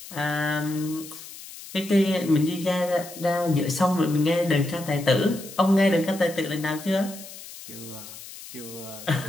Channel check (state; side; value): noise; left; hiss, 15 dB below the sound